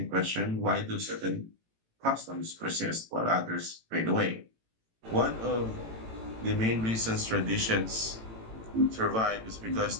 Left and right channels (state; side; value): late; left; 18 ms